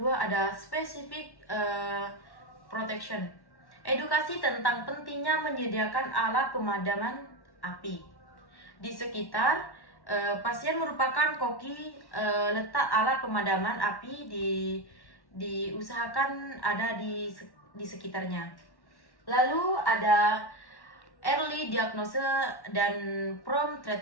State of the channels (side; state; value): right; late; 1.1 ms